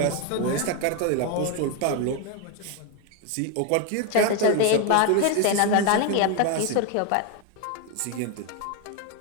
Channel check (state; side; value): different; both; correlation 0.01